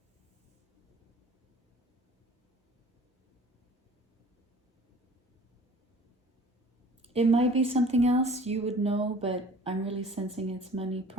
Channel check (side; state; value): both; normal; correlation 0.48